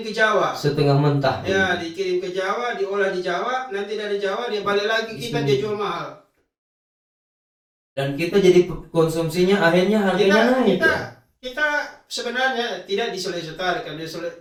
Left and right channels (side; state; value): both; identical; correlation 1.00